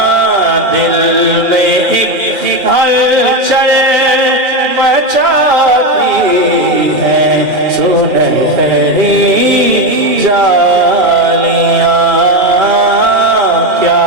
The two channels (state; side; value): late; left; 2.4 ms